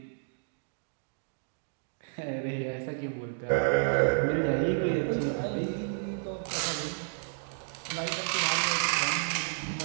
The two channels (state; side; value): silent; left; digital silence